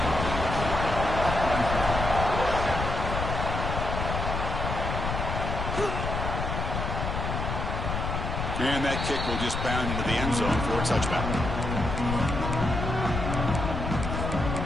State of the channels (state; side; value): noise; left; rumble, 3 dB below the sound